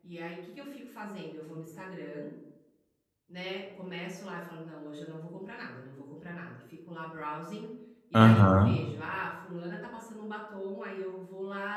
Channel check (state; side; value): identical; both; correlation 1.00